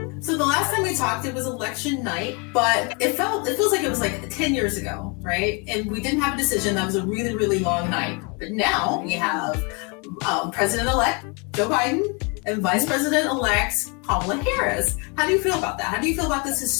So the last time we talked, it was election night, but it feels like it was like 10 years ago, right? And we didn't have a decision. That was a really, really long night. But now we have President-elect Joe Biden and Vice President-elect Kamala Harris. How do you feel about that? How do you feel about this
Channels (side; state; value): right; quieter; 32.3 dB